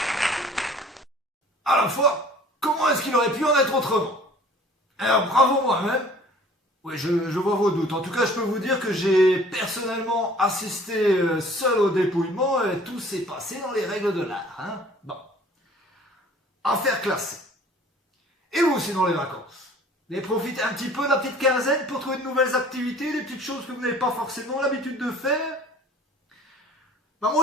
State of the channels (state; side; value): normal; both; correlation 0.50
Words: À la fois, comment est-ce qu'il aurait pu en être autrement? Alors, bravo moi-même. Oui, je vois vos doutes. En tout cas, je peux vous dire que j'ai personnellement assisté seul au dépouillement et tout s'est passé dans les règles de l'art. Hein. Bon. Affaire classée. Et vous aussi dans les vacances? Vous avez profité un petit peu de la petite quinzaine pour trouver de nouvelles activités, des petites choses que vous n'avez pas forcément l'habitude de faire? Ben